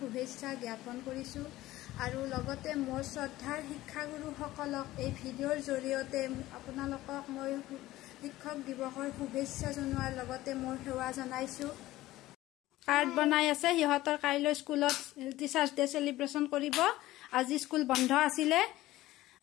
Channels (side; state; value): right; quieter; 16.5 dB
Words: জ্ঞাপন কৰিছোঁ আৰু লগতে মোৰ শ্ৰদ্ধাৰ শিক্ষাগুৰুসকলক এই ভিডিঅ'ৰ জৰিয়তে আপোনালোকক মই শিক্ষক দিৱসৰ শুভেচ্ছা জনোৱাৰ লগতে মোৰ সেৱা জনাইছোঁ। কাৰ্ড বনাই আছে, সিহঁতৰ কাইলৈ স্কুলত টিচাৰ্ছ ডে চেলিব্ৰেশ্যন কৰিব। আজি স্কুল বন্ধ আছিলে